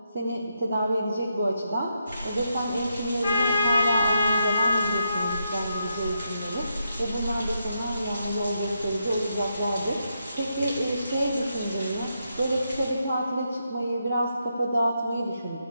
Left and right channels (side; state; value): both; inverted; correlation -0.82